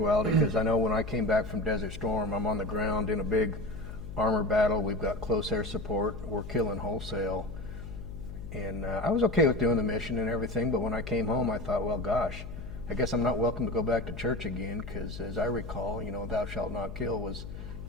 because I know when I came back from Desert Storm, I'm on the ground in a big armor battle. We've got close air support. We're killing wholesale. And I was okay with doing the mission and everything, but when I came home, I thought, well, gosh, I guess I'm not welcome to go back to church again, because as I recall, thou shalt not kill was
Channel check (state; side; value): noise; left; hum, 10 dB below the sound